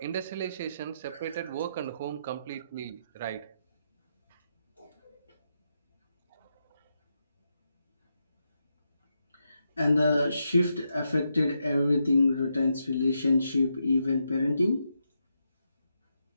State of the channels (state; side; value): inverted; both; correlation -0.84